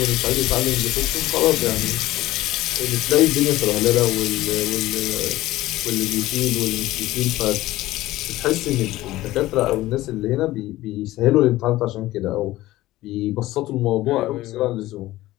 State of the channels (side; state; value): right; quieter; 16.7 dB